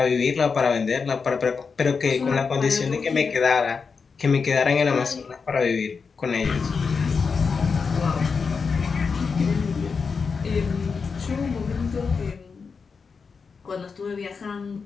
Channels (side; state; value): right; quieter; 5.3 dB